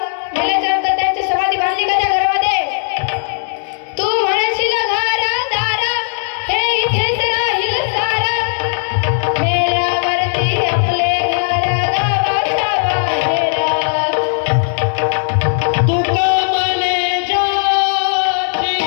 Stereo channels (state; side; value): silent; right; 69 dB below the other